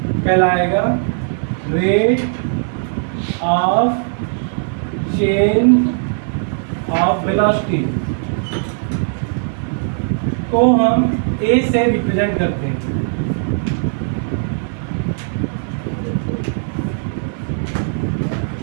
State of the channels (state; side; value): silent; left; 55 dB below the other